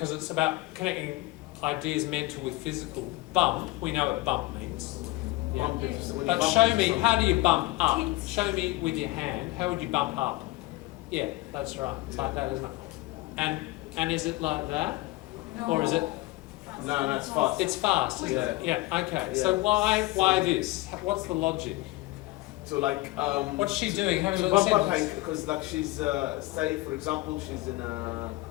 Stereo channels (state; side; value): quieter; right; 19.8 dB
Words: it's about connecting ideas mental with physical. Bump. We know what bump means. Yeah. Bump it, when you But bump show into me, something. how do you bump up? Kids. Show me with your hand, how would you bump up? Yeah, that's right. It's like that, isn't it? And is it like that? Or is it, No, it's fast. it's fast, isn't it? Yeah, okay. So why this? What's the logic? So like, What's she doing? Have a to look bump at up the Hank, because like she's, say for example, she's in a,